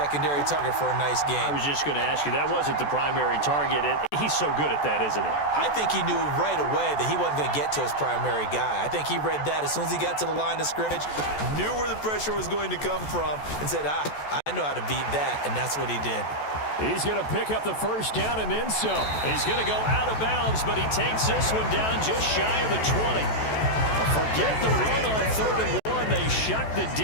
target for a nice game. I was just going to ask you, that wasn't the primary target, and he's so good at that, isn't he? I think he knew right away that he wasn't going to get to his primary guy. I think he read that as soon as he got to the line of scrimmage, knew where the pressure was going to come from, and said, I know how to beat that, and that's what he did. He's going to pick up the first down and then some. He's going to go out of bounds, but he takes this one down just shy of the 20. Forget the run on 3rd and 1. They shuck the D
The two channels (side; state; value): right; late; 14 ms